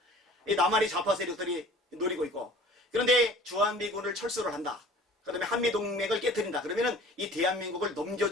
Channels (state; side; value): normal; both; correlation 0.47